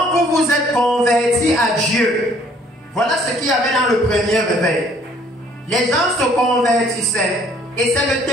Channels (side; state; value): both; normal; correlation 0.60